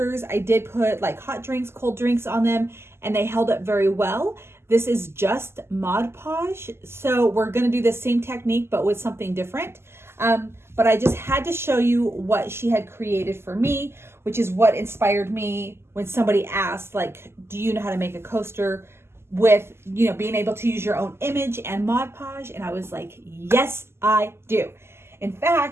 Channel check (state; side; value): late; left; 0.12 ms